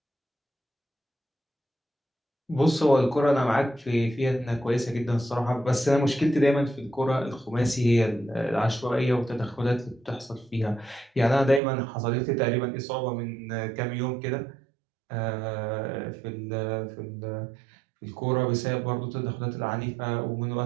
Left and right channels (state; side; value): drops out; left; at 11.6 s